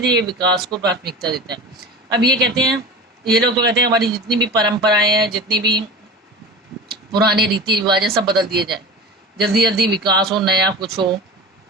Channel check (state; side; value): normal; both; correlation 0.33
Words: विकास को प्राथमिकता देता है। अब ये कहते हैं, ये लोग तो कहते हैं हमारी जितनी भी परंपराएं हैं, जितनी भी पुराने रीति रिवाज है, सब बदल दिए जाए, जल्दी जल्दी विकास हो, नया कुछ हो।